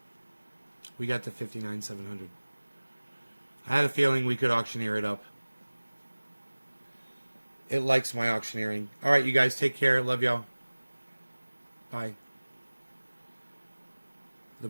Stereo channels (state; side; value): inverted; both; correlation -1.00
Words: We got to 59,700. I had a feeling we could auctioneer it up. It likes my auctioneering. All right, you guys, take care. Love y'all. Bye. The